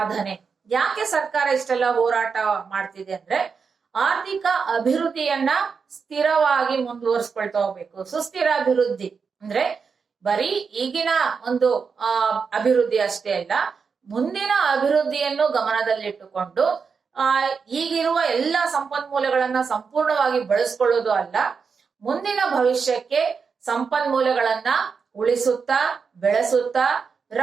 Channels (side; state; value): left; quieter; 5.6 dB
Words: ಯಾಕೆ ಸರ್ಕಾರ ಇಷ್ಟೆಲ್ಲ ಹೋರಾಟ ಮಾಡ್ತಿದೆ ಅಂದ್ರೆ ಆರ್ಥಿಕ ಅಭಿವೃದ್ಧಿಯನ್ನ ಸ್ಥಿರವಾಗಿ ಮುಂದುವರಿಸ್ಕೊಳ್ತಾ ಹೋಗ್ಬೇಕು. ಸುಸ್ಥಿರ ಅಭಿವೃದ್ಧಿ ಅಂದ್ರೆ ಬರೀ ಈಗಿನ ಒಂದು ಅಭಿವೃದ್ಧಿ ಅಷ್ಟೇ ಅಲ್ಲ, ಮುಂದಿನ ಅಭಿವೃದ್ಧಿಯನ್ನು ಗಮನದಲ್ಲಿಟ್ಟುಕೊಂಡು ಈಗಿರುವ ಎಲ್ಲ ಸಂಪನ್ಮೂಲಗಳನ್ನ ಸಂಪೂರ್ಣವಾಗಿ ಬಳಸ್ಕೊಳ್ಳೋದು ಅಲ್ಲ, ಮುಂದಿನ ಭವಿಷ್ಯಕ್ಕೆ ಸಂಪನ್ಮೂಲಗಳನ್ನ ಉಳಿಸುತ್ತಾ, ಬೆಳೆಸುತ್ತಾ,